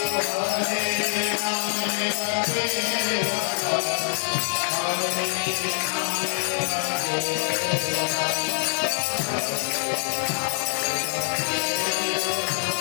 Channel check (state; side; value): silent; right; 62 dB below the other